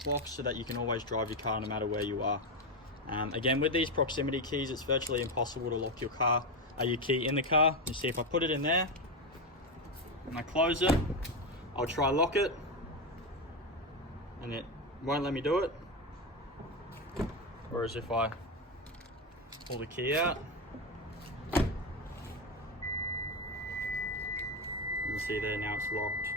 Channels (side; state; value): both; normal; correlation 0.12